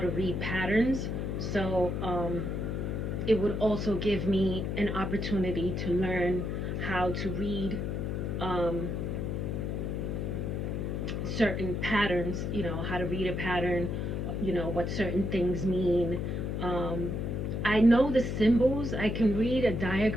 read patterns, so it would also give me an opportunity to learn how to read um, certain patterns, how to read a pattern, what certain things mean. Um, I know the symbols. I can read a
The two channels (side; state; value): left; noise; hum, 2 dB below the sound